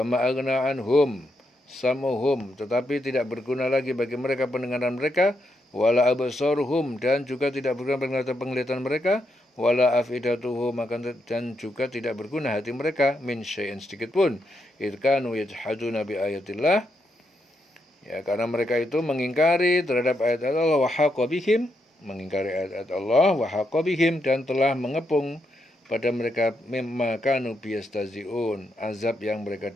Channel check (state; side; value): normal; both; correlation 0.81